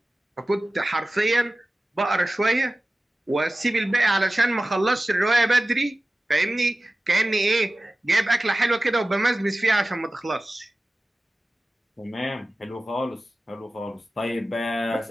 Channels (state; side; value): normal; both; correlation 0.96